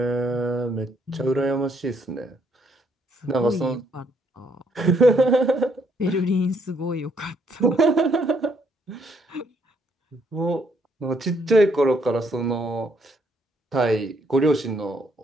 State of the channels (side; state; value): both; normal; correlation 0.71